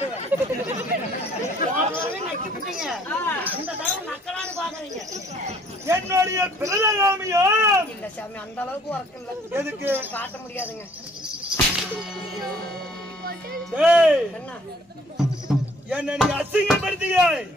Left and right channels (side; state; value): both; normal; correlation 0.59